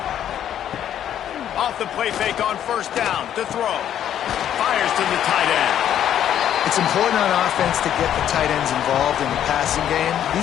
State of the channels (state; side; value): quieter; right; 10.4 dB